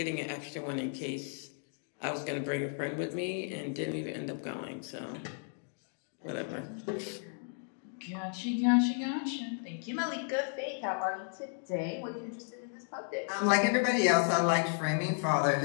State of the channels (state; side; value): silent; right; 55 dB below the other